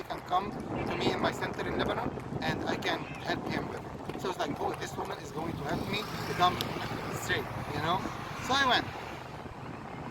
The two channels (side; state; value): both; identical; correlation 1.00